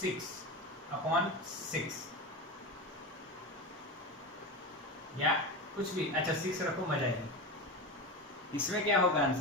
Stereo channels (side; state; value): both; normal; correlation 0.22